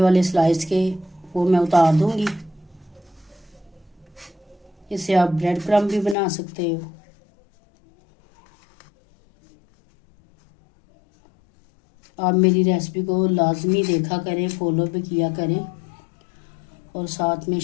स्लाइस के वो मैं उतार दूँगी। इसे आप ब्रेड क्रम्ब भी बना सकते हो। आप मेरी रेसिपी को लाजमी देखा करें, फॉलो भी किया करें और साथ में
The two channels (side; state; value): right; drops out; at 6.2 s